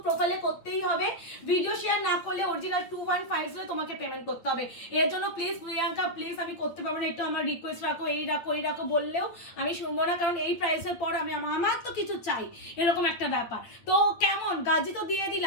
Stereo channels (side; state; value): right; late; 8.7 ms